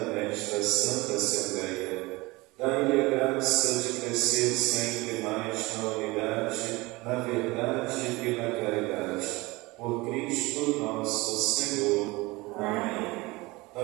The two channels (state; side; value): quieter; left; 22.6 dB